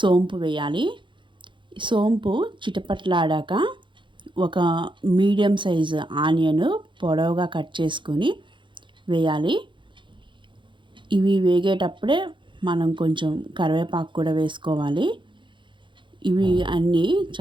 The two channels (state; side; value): late; left; 0.23 ms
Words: వేయాలి. సోంపు చిటపట్లాడాక ఒక మీడియం సైజు ఆనియన్ పొడవుగా కట్ చేసుకొని వేయాలి. ఇవి వేగేటప్పుడే మనం కొంచెం కరివేపాకు కూడా వేసుకోవాలి. ఇవి అన్నీ